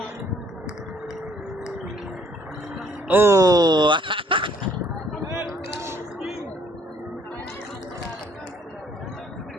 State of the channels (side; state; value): both; normal; correlation 0.62